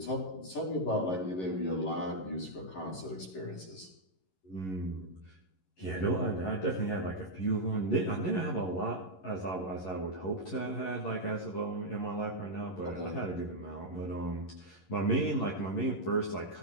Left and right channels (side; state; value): right; late; 11 ms